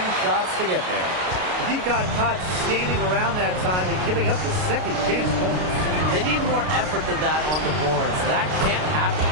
shots to get there. He got caught standing around that time and giving up the second chance points. They need more effort than that on the boards. That can't happen.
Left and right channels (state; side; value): late; left; 33 ms